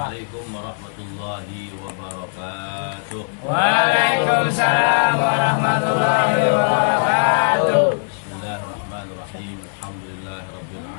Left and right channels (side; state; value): right; silent; digital silence